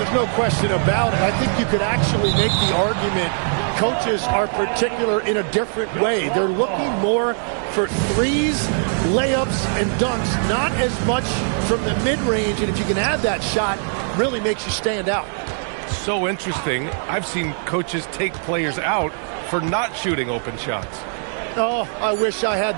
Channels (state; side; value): silent; left; 63 dB below the other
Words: no question about it. I think you could actually make the argument coaches are particular in a different way. They're looking more for threes, layups, and dunks, not as much from the mid-range. And if you can add that shot, really makes you stand out. So interesting. I've seen coaches take players out for not shooting open shots. Oh, I wish I had